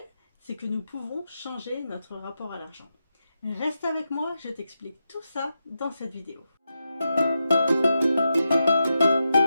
c'est que nous pouvons changer notre rapport à l'argent. Reste avec moi, je t'explique tout ça dans cette vidéo.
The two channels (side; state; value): both; inverted; correlation -0.87